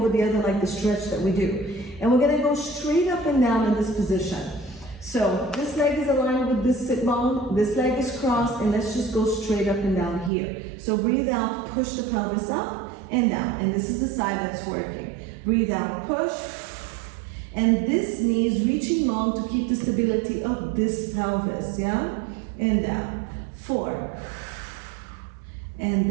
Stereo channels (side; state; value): left; drops out; at 10.3 s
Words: the other like the stretch that we do. And we're going to go straight up and down in this position. So this leg is aligned with this sit bone. This leg is crossed. And let's just go straight up and down here. So breathe out. Push the pelvis up and down. And this is the side that's working. Breathe out. Push. And this knee is reaching long to keep the stability of this pelvis. Yeah? And down. 4. And